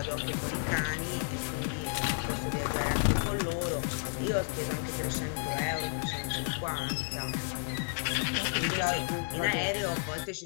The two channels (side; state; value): right; silent; 56 dB below the other